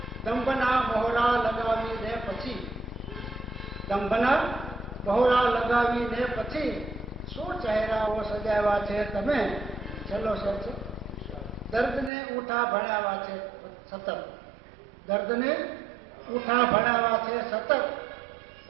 દંભના મોહરા લગાવીને પછી, દંભના મોહરા લગાવીને પછી શું ચહેરાઓ સજાવ્યા છે તમે. છેલ્લો શેર છે, દર્દને ઉઠા ભણાવ્યા છે સતત, દર્દને ઉઠા ભણાવ્યા છે સતત,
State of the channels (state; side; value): drops out; left; at 12.1 s